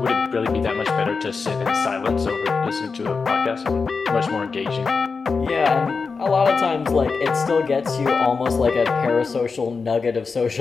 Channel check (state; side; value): quieter; right; 4.8 dB